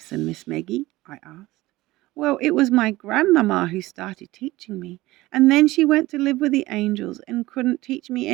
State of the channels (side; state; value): left; quieter; 18.6 dB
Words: Miss Maggie?" I asked. "Well, it was my grandmamma who started teaching me, and then she went to live with the angels and couldn't teach me